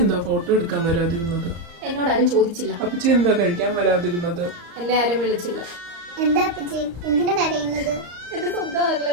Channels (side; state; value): left; late; 34 ms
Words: എന്താ ഫോട്ടോ എടുക്കാൻ വരാതിരുന്നത്? എന്നോടാരും ചോദിച്ചില്ല. അപ്പച്ചി എന്താ കഴിക്കാൻ വരാതിരുന്നത്? എന്നെ ആരും വിളിച്ചില്ല. എന്താ അപ്പച്ചി എന്തിനാ കരയുന്നത്? എന്റെ സ്വന്തം